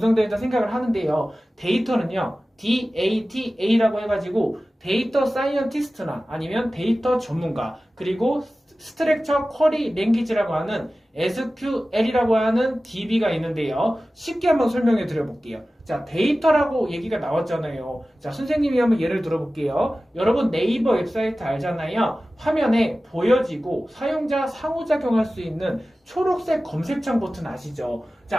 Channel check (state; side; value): normal; both; correlation 0.96